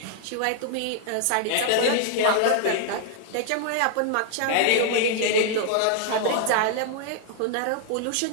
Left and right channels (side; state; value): both; different; correlation 0.00